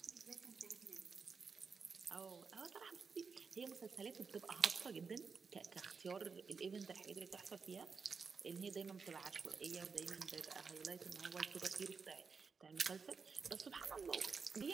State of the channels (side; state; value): left; quieter; 5.3 dB